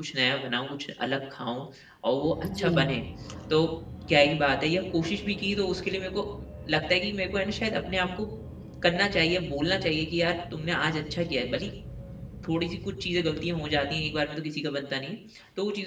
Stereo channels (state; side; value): identical; both; correlation 1.00